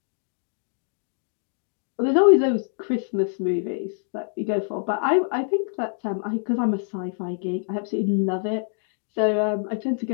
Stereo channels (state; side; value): silent; right; digital silence